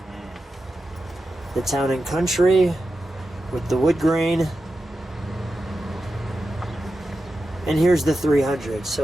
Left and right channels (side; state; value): both; normal; correlation 0.91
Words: The Town and Country with the wood grain. And here's the 300,